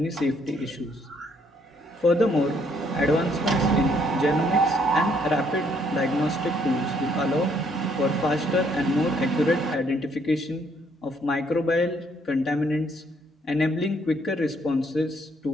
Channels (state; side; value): normal; both; correlation 0.68